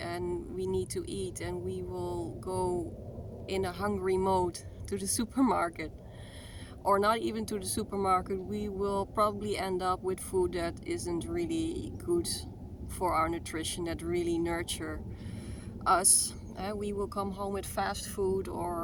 we need to eat, and we will go in a hungry mode to the supermarket, or not even to the supermarket. We will probably end up with food that isn't really good for our nutrition, that really nurture us. We will come home with fast food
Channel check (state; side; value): identical; both; correlation 1.00